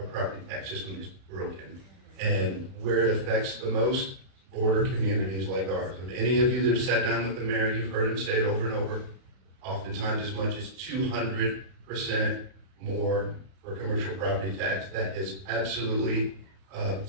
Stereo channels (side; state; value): left; late; 32 ms